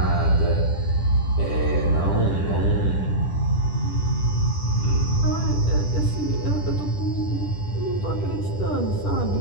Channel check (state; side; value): late; right; 10 ms